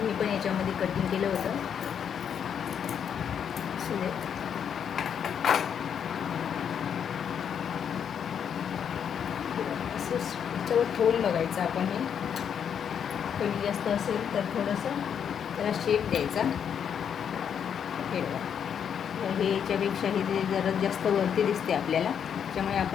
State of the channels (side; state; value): right; quieter; 8.0 dB